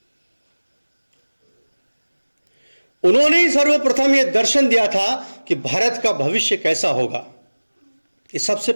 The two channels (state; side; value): inverted; both; correlation -1.00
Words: उन्होंने ही सर्वप्रथम यह दर्शन दिया था कि भारत का भविष्य कैसा होगा, ये सबसे